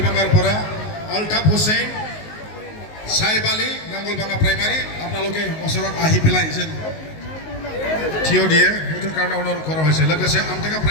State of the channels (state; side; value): late; right; 19 ms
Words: अल्ताफ हुसैन साहिब आली नांगलबांगा प्राइमारि আপোনালোকে ওচৰত আহি পেলাই যেন থিয় দিয়ে সেইটোৰ কাৰণে অনুৰোধ কৰা হৈছে লোকসে আমটেকা